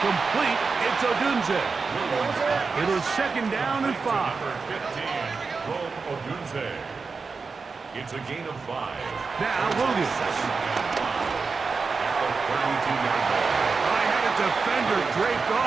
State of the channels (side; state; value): left; quieter; 4.7 dB